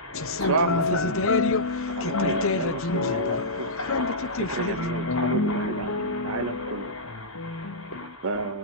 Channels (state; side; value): normal; both; correlation -0.14